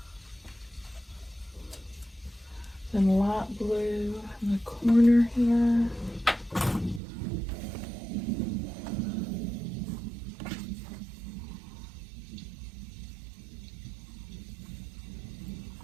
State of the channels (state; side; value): drops out; left; at 7.0 s